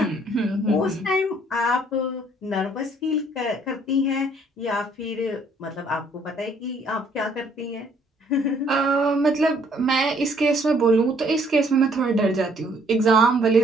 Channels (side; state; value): both; normal; correlation 0.63